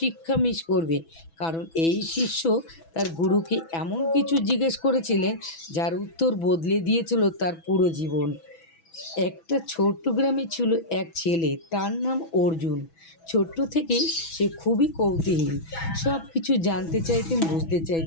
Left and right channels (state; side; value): late; right; 6.1 ms